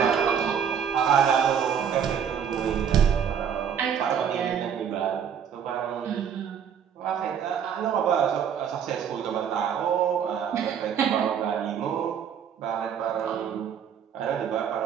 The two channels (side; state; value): left; quieter; 8.0 dB